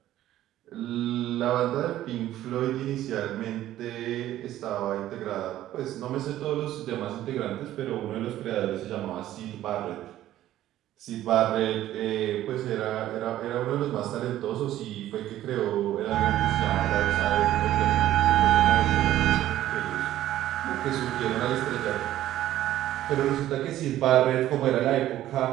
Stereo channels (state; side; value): quieter; left; 13.4 dB